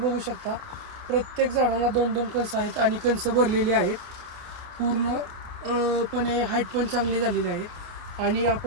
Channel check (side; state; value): left; late; 28 ms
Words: शकता. प्रत्येक झाडाला 2-2 कणस आहेत आणि कणस भरलेली आहेत. पूर्णपणे हाईट पण चांगली झालेली आहे. आणि